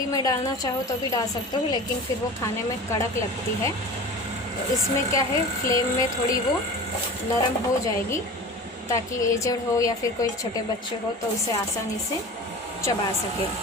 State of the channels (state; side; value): normal; both; correlation 0.35